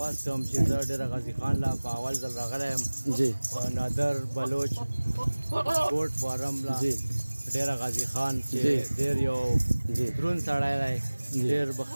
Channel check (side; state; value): both; inverted; correlation -1.00